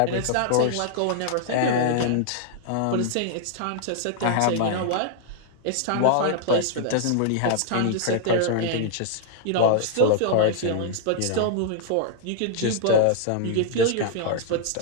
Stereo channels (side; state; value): both; different; correlation 0.00